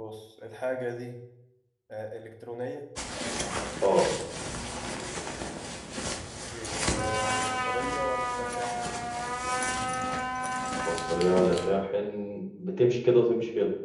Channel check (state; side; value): identical; both; correlation 1.00